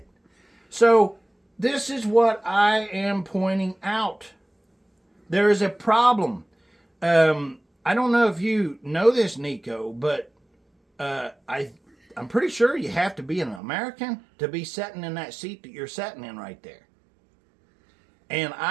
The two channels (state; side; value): drops out; left; at 13.6 s